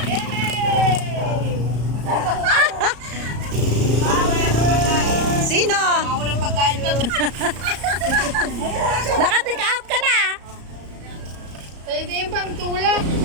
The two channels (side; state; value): left; late; 34 ms